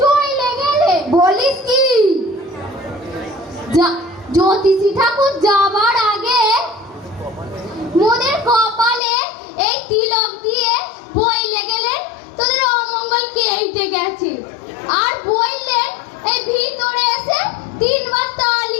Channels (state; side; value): drops out; right; at 9.0 s